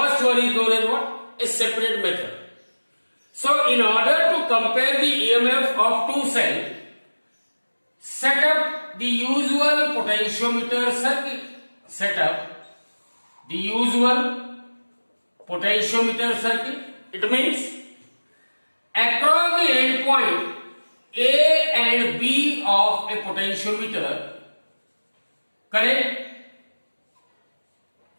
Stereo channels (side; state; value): both; inverted; correlation -1.00